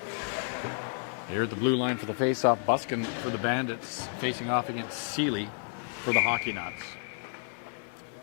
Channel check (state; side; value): silent; right; digital silence